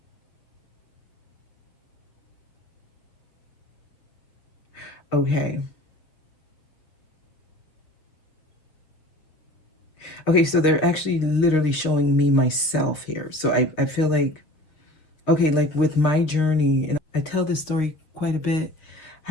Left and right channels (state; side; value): late; right; 6.5 ms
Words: Okay. Okay, so they're actually literally showing me myself here. So I feel like, okay, like with my journey, and I tell this story quite a bit,